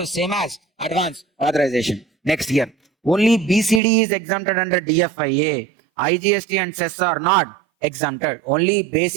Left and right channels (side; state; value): left; drops out; at 3.8 s